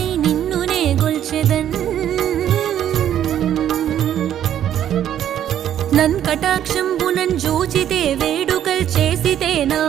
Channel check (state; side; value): quieter; left; 10.6 dB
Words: నిన్నునే గొల్చెదన్ నన్ కటాక్షంబునన్ జూచితే వేడుకల్ చేసితే నా